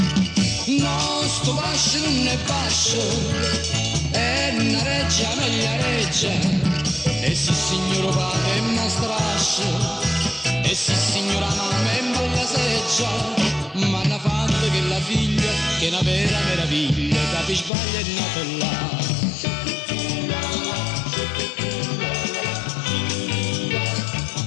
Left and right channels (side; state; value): right; drops out; at 17.7 s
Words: No, sto fascio non è fascio, è una reggia, meglio reggia, e sì signor padre è una strascia, e sì signora mamma è bella seggia, ma hanno fatto che la figlia, che è una vera meraviglia, capi sbaglia è nata là.